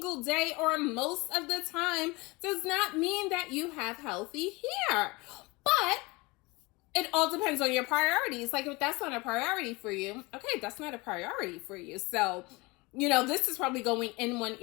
day or most of the time does not mean that you have healthy hair. But it all depends on your priorities. Like, if that's not a priority for you, okay, that's not a priority for you. So, this is probably going in one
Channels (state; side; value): quieter; right; 24.6 dB